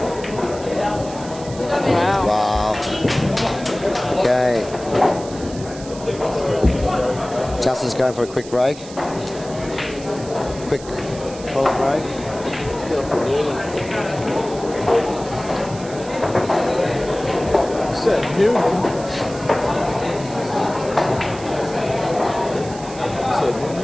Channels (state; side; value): noise; right; hiss, 17 dB below the sound